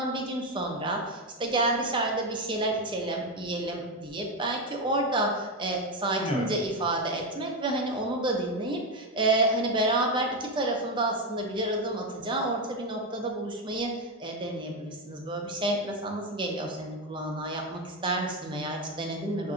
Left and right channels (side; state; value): both; normal; correlation 0.10